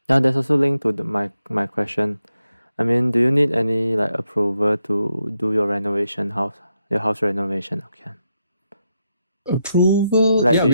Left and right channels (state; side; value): inverted; both; correlation -0.84